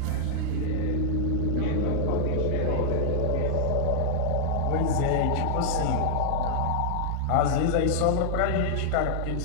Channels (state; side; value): different; both; correlation -0.01